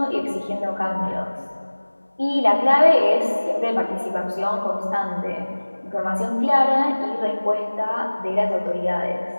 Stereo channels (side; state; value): both; inverted; correlation -1.00